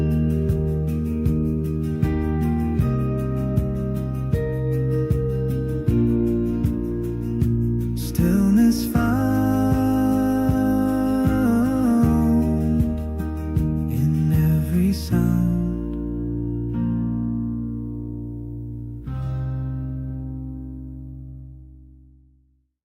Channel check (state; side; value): identical; both; correlation 1.00